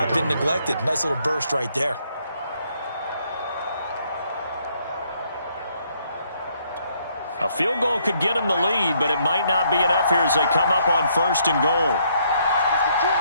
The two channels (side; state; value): both; inverted; correlation -0.70